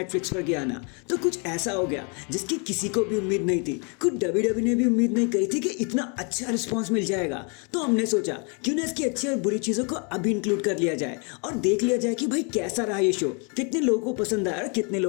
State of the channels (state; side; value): quieter; right; 35.9 dB